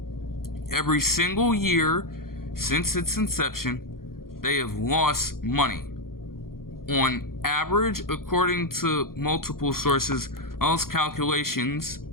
Every single year since its inception, they have lost money. On average, according to multiple sources, those calculations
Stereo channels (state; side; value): late; right; 0.92 ms